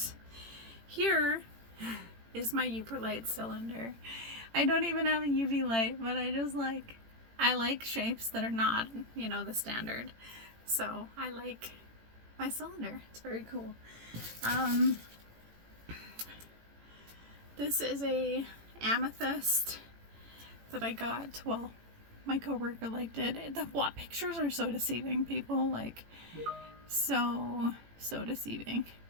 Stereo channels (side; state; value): left; late; 18 ms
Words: Here is my Uperlite cylinder. I don't even have a UV light, but I like shapes that are not, you know, the standard. So I like my cylinder. It's very cool. This is a amethyst that I got. Well, my coworker liked it. The pictures are so deceiving, people. Like, so deceiving.